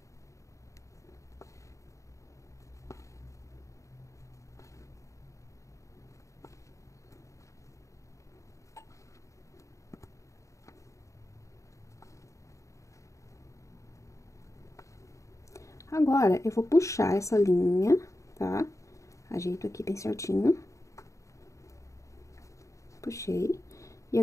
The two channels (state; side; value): late; right; 0.15 ms